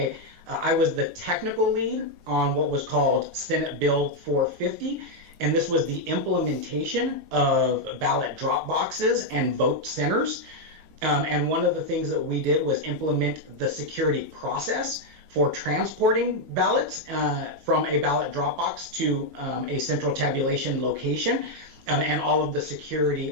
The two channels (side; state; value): left; late; 6.5 ms